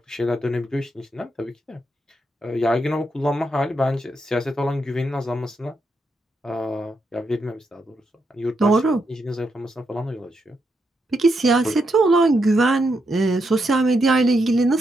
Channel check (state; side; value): normal; both; correlation 0.81